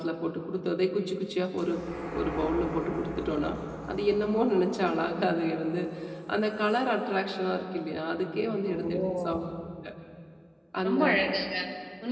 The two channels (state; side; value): identical; both; correlation 1.00